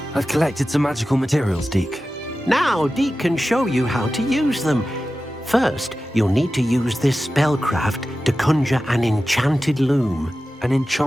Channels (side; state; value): both; normal; correlation 0.94